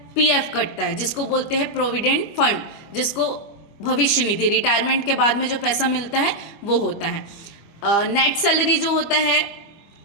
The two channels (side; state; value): right; late; 25 ms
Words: पीएफ कटता है, जिसको बोलते हैं प्रोविडेंट फंड, जिसको भविष्य निधि, रिटायरमेंट के बाद में जो पैसा मिलता है वो होता है। नेट सैलरी जो होता है,